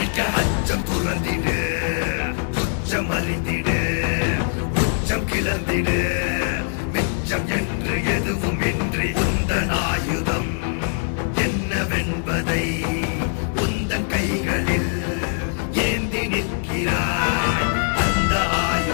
அச்சம் துறந்திடு துச்சம் அறிந்திடு உச்சம் கிளந்திடு மிச்சம் என்று எதுவும் இன்றி உந்தன் ஆயுதம் என்னவென்பதை உந்தன் கைகளில் ஏந்தி நிற்கிறாய் அந்த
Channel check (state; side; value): silent; right; 60 dB below the other